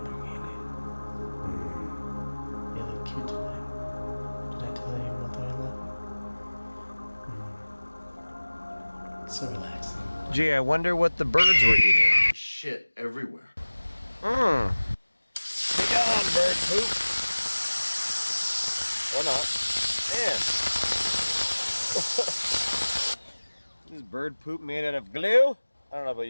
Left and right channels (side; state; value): both; inverted; correlation -1.00